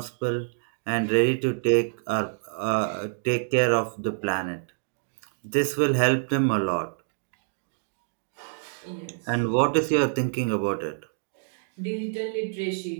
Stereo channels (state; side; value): silent; left; digital silence